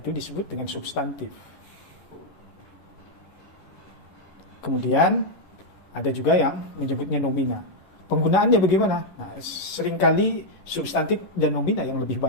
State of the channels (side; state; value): right; late; 10 ms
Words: disebut dengan substantif. Kemudian ada juga yang menyebutnya nomina. Penggunaannya bagaimana? Nah, seringkali substantif dan nomina yang lebih